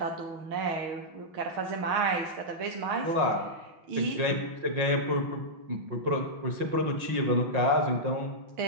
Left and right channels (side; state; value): left; late; 5.6 ms